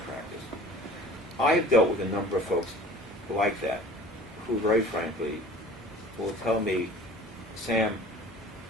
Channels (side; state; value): both; normal; correlation 0.45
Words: I've dealt with a number of folks like that who, very frankly, will tell me, Sam,